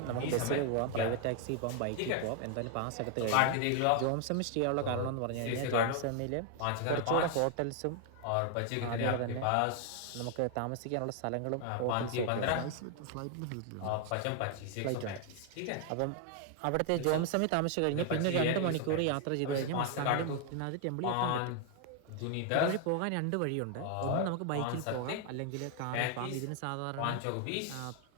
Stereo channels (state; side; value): different; both; correlation 0.00